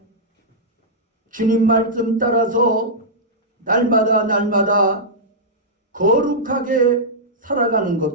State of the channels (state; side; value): normal; both; correlation -0.10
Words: 주님 말씀 따라서 날마다 거룩하게 살아가는